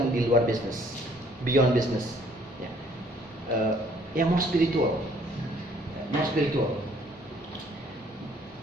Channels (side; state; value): both; normal; correlation 0.61